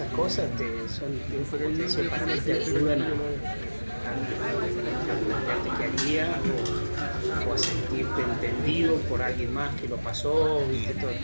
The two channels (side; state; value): both; inverted; correlation -1.00